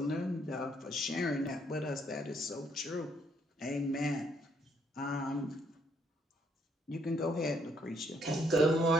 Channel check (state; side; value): normal; both; correlation 0.70